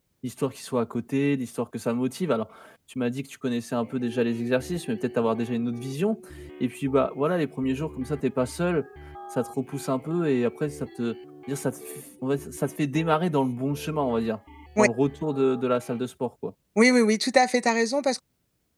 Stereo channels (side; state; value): both; identical; correlation 1.00